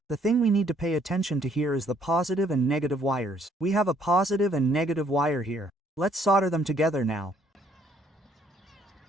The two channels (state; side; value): normal; both; correlation 0.65